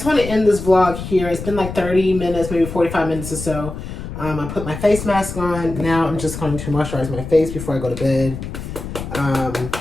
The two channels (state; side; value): noise; left; rumble, 8 dB below the sound